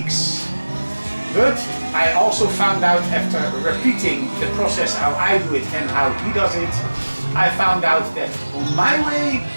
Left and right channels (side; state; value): both; inverted; correlation -1.00